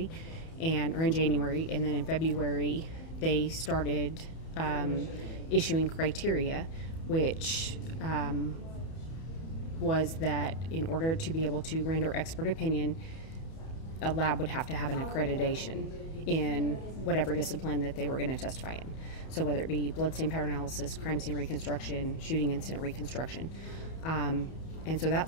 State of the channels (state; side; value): late; right; 31 ms